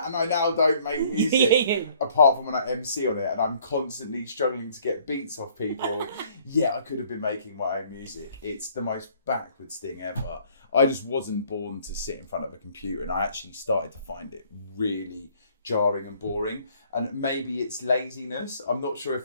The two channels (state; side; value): inverted; both; correlation -0.59